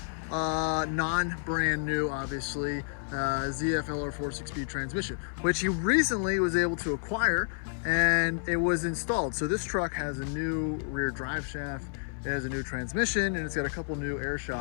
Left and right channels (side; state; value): right; silent; 56 dB below the other